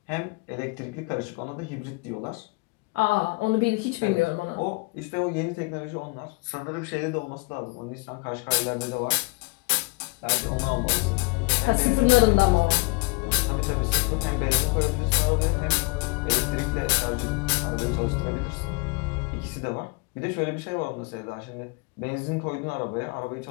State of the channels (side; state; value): right; quieter; 27.0 dB